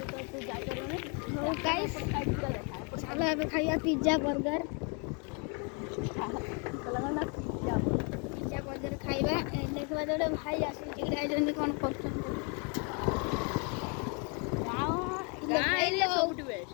चलो ଏବେ ଖାଇବା ପିଜ୍ଜା ବର୍ଗର। ପିଜ୍ଜା ବର୍ଗର ଖାଇବା ଦେଖିବା ଗୋଟେ ଭାଇ ଆସିଛି ଯାଇଛନ୍ତି କ'ଣ କରୁଛନ୍ତି।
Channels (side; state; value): right; quieter; 35.4 dB